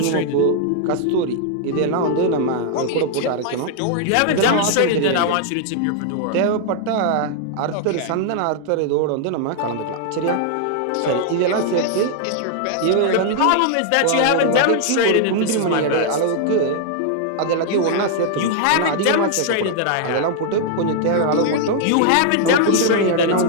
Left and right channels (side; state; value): both; different; correlation -0.01